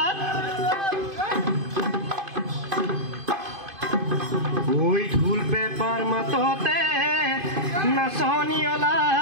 ঐ ঢোল পেপাৰ মাততে নাচনি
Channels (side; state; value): left; late; 2.5 ms